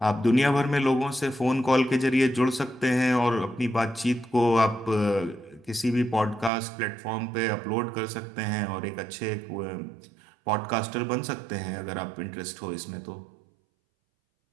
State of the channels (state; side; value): drops out; left; at 6.5 s